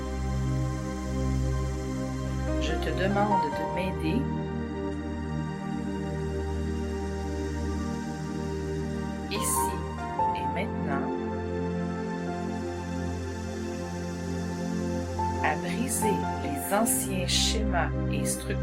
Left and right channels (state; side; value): identical; both; correlation 1.00